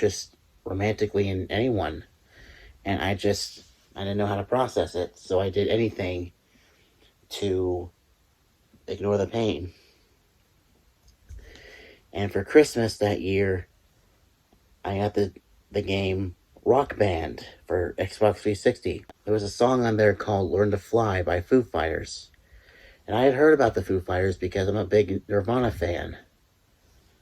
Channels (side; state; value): both; identical; correlation 1.00